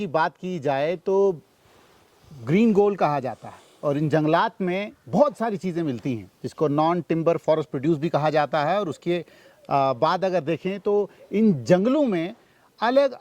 बात की जाए तो ग्रीन गोल्ड कहा जाता है और इन जंगलात में बहुत सारी चीज़ें मिलती हैं जिसको नॉन टिम्बर फॉरेस्ट प्रोड्यूस भी कहा जाता है। और उसके बाद अगर देखें तो इन जंगलों में अलग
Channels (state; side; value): identical; both; correlation 1.00